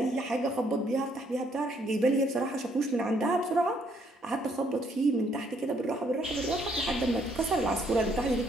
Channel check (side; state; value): both; normal; correlation 0.69